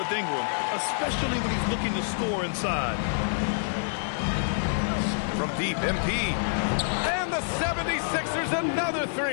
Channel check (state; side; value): silent; right; digital silence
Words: Ingram, especially when he's looking to score inside. From deep, MP. And the 76ers another